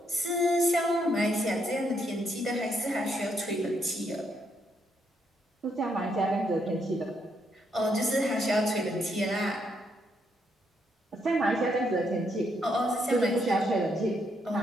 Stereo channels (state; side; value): normal; both; correlation 0.75